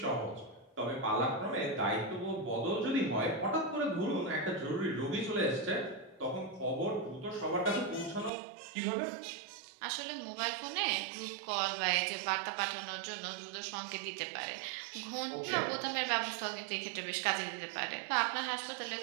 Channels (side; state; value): left; drops out; at 8.3 s